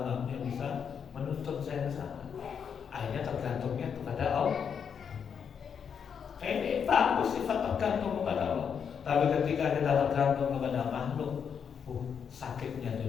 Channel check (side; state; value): right; quieter; 7.2 dB